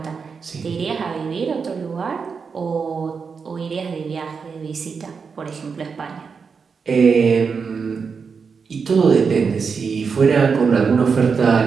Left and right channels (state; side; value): quieter; left; 5.6 dB